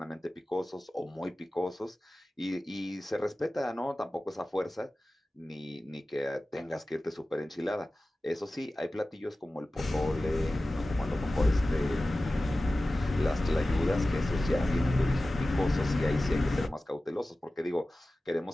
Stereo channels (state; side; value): normal; both; correlation 0.96